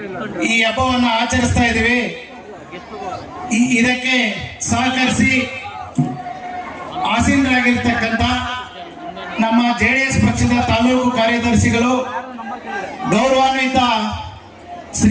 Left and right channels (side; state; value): both; identical; correlation 1.00